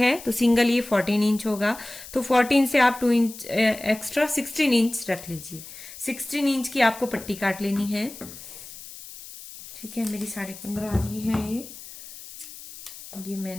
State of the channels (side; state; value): left; noise; hiss, 15 dB below the sound